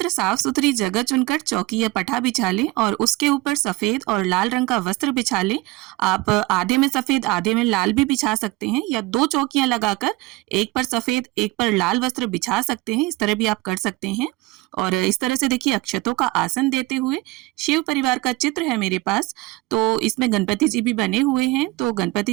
साफ सुथरी जगह चुनकर चौकी या पठा बिछा लें और उसके ऊपर सफेद और लाल रंग का वस्त्र बिछा लें। आप आधे में सफेद आधे में लाल भी बिछा सकते हैं या दो चौकियां लगाकर एक पर सफेद एक पर लाल वस्त्र बिछा सकते हैं। इस तरह भी आप कर सकते हैं। और इस तरह से देखिए, अक्षतों का आसन देते हुए शिव परिवार का चित्र है मेरे पास, तो इसमें गणपति जी भी बने हुए हैं। तो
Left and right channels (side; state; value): left; quieter; 20.9 dB